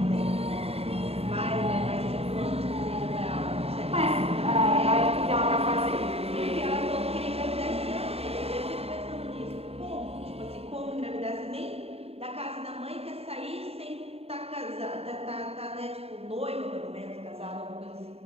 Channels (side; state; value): left; late; 0.29 ms